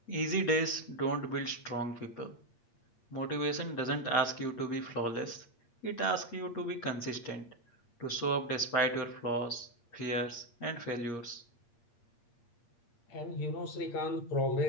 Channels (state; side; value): late; right; 8.5 ms